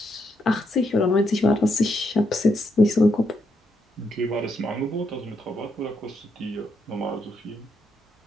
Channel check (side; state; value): both; normal; correlation 0.78